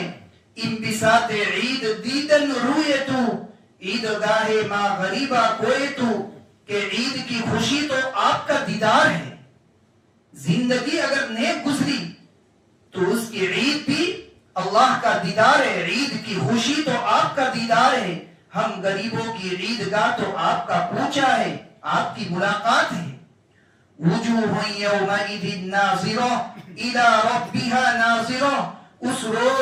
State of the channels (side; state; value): both; identical; correlation 1.00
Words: انبساط عید دیدن روئے تو عیدگاہ ما غریبہ کوئے تو, کہ عید کی خوشی تو آپ کا دیدار ہے. زندگی اگر نیک گزری تو اس کی عید بھی اللہ کا دیدار ہے, عید کی خوشی تو آپ کا دیدار ہے. ہم غریبوں کی عیدگاہ تو آپ کا کوچہ ہے, آپ کی ملاقات ہے. وجوہ یومئذ ناظرہ الی ربہا ناظرہ, اس